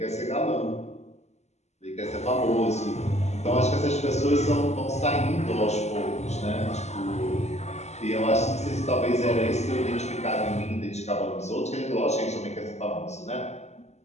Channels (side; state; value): right; late; 0.32 ms